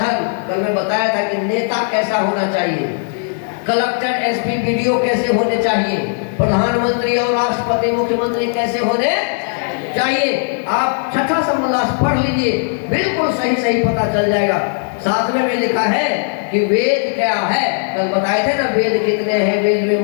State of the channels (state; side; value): silent; right; 68 dB below the other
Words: कल मैं बताया था कि नेता कैसा होना चाहिए, कलेक्टर एसपी बीडीओ कैसे होने चाहिए, प्रधानमंत्री और राष्ट्रपति मुख्यमंत्री कैसे होने चाहिए। आप छठा समुल्लास पढ़ लीजिए, बिल्कुल सही सही पता चल जाएगा। सातवें में लिखा है कि वेद क्या है, कल बताए थे ना वेद कितने हैं, वेद में